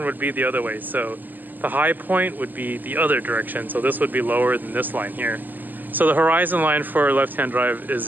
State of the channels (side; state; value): left; late; 0.086 ms